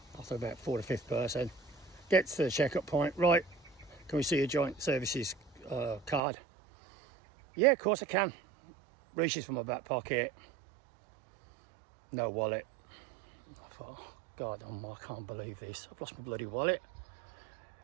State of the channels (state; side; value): drops out; left; at 6.2 s